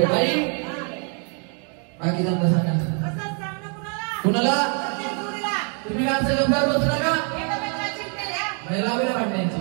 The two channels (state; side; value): quieter; left; 39.7 dB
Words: बाकी सांगा सांगा कुणाला तुम्ही काय असं गंभीर बसू नका महिला वगैरे वाटण्याची